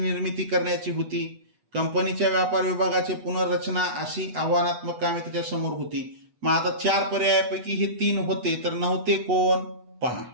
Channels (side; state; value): left; late; 8.2 ms